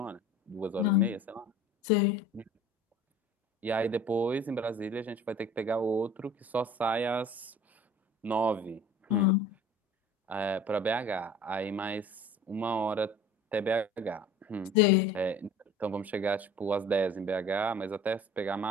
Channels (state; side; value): normal; both; correlation 0.45